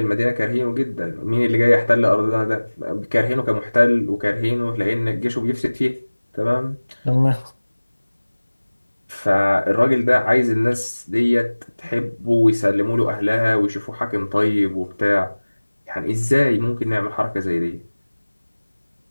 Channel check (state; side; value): inverted; both; correlation -1.00